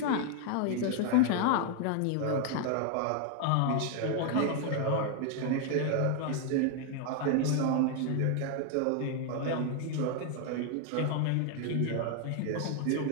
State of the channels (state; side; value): different; both; correlation 0.00